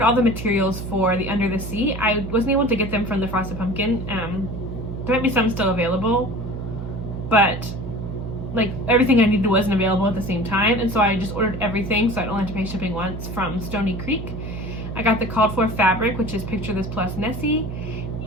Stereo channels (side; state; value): right; noise; hum, 7 dB below the sound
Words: all the materials for the Under the Sea. I wasn't able to get them from the Frosted Pumpkin. There might be some still available, but like everything I needed wasn't available at the same time, and so I just ordered everything so I don't have to pay shipping once from Stony Creek. I got the called for fabric, which is Picture This plus Nessie,